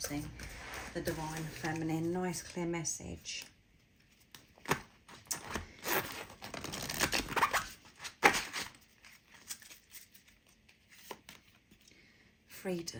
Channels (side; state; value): both; identical; correlation 1.00